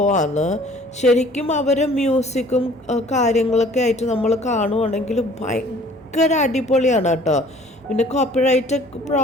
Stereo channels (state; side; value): normal; both; correlation 0.53